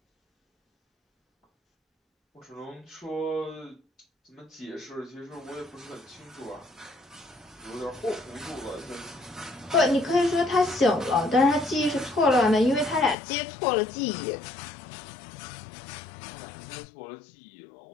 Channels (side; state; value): right; drops out; at 13.2 s